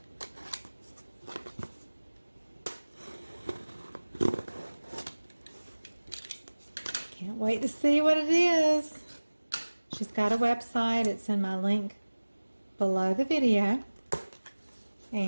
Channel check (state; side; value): inverted; both; correlation -1.00